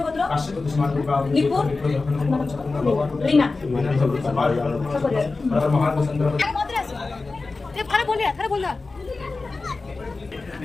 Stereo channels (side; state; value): right; quieter; 3.7 dB